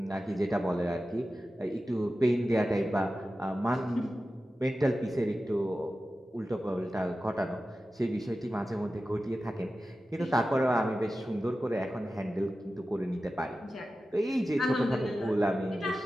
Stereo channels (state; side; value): normal; both; correlation 0.94